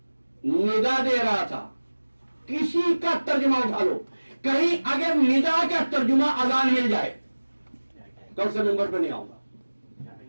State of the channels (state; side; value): inverted; both; correlation -1.00